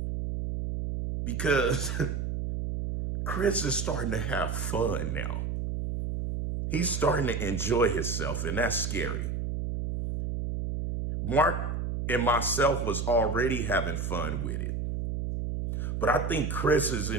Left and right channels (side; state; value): right; noise; hum, 2 dB below the sound